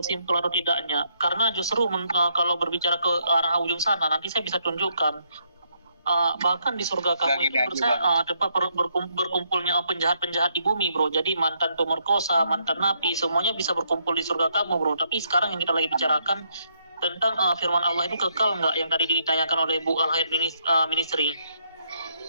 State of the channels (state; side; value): inverted; both; correlation -0.74